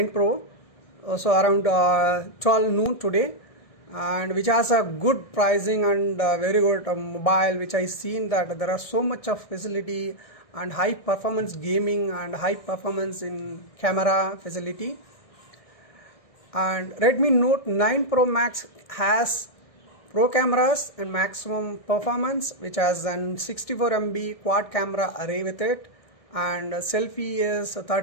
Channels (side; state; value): right; late; 1.6 ms